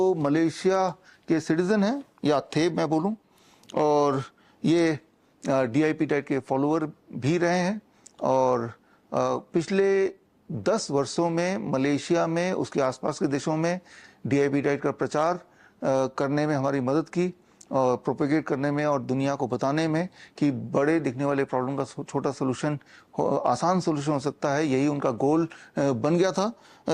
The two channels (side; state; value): both; identical; correlation 1.00